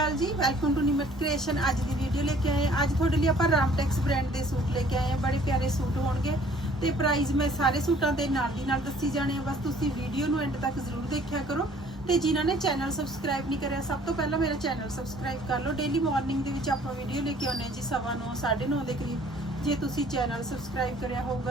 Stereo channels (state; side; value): normal; both; correlation 0.56